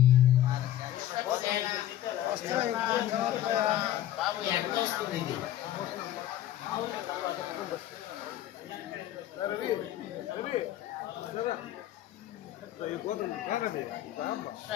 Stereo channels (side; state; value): right; quieter; 12.7 dB